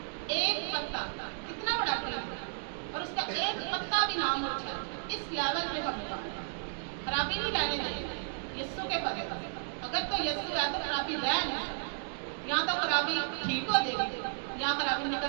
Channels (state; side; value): silent; left; digital silence